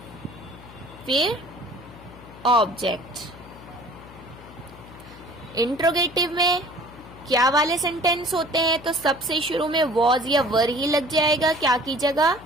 फिर ऑब्जेक्ट। इंट्रोगेटिव में क्या वाले सेंटेंस होते हैं, तो सबसे शुरू में वॉज या वर ही लग जाएगा क्या की जगह,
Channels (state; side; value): noise; left; hum, 19 dB below the sound